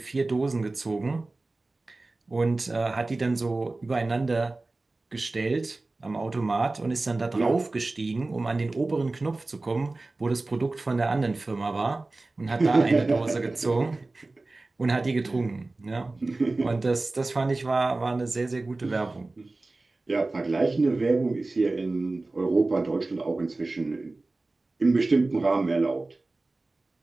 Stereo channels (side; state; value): left; quieter; 3.2 dB